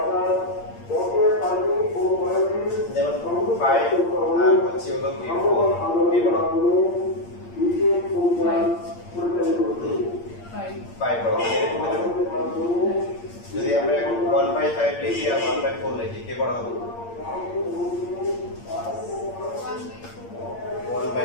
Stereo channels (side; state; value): right; late; 8.7 ms